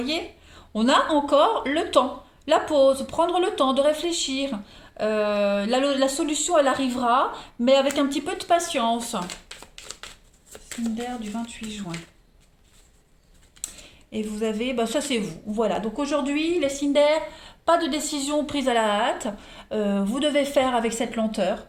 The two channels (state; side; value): identical; both; correlation 1.00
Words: on a encore le temps, la pause, prendre le temps de réfléchir. La solution, elle arrivera, mais avec un petit peu de patience. Cinder du 28 juin. Et vous avez, bah ça c'est vous. Voilà, donc aujourd'hui, les Cinder, pas de décision prise à la hâte. Vous devez faire avec cette lenteur.